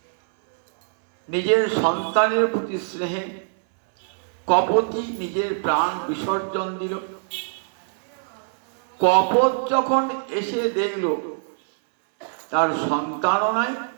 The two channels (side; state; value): left; silent; 63 dB below the other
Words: নিজের সন্তানের প্রতি স্নেহে কপটি নিজের প্রাণ বিসর্জন দিল। কপট যখন এসে দেখল তার সন্তানও নাই